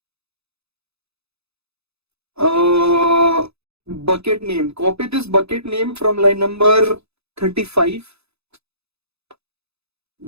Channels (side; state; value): left; late; 0.79 ms